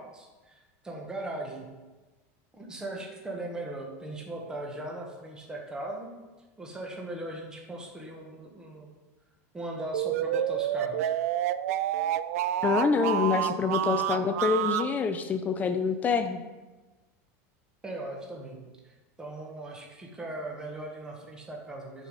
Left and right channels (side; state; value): both; normal; correlation 0.28